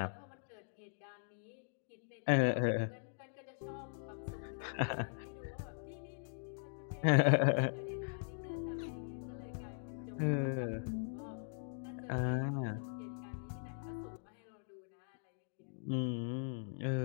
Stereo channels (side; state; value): right; silent; digital silence